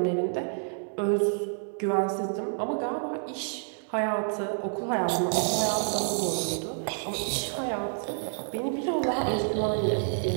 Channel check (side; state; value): left; silent; digital silence